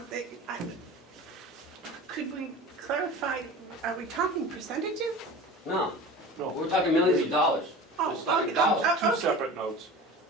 Could we clarify, are we talking percentages? No, No, we're talking millions of dollars. Oh, Just talking okay. dollars. Oh, two okay. separate notes.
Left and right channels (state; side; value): normal; both; correlation 0.36